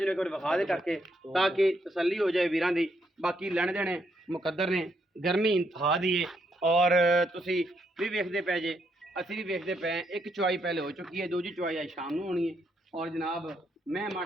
एक बार विखा दे करके ताकि तसल्ली हो जाए वीरां दी। बाकी लैने देने मुकद्दर ने गर्मी इंतहा दी है और तुसी भी वेखदे पे जे असी भी वेखदे पे एक चवाई पहले हो चुकी है दूजी चवाई आज शाम को होनी है। और जनाब मैं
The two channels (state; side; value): normal; both; correlation 0.76